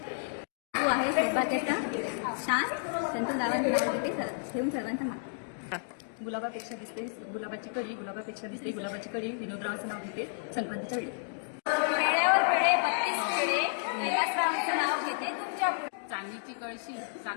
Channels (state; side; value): silent; right; digital silence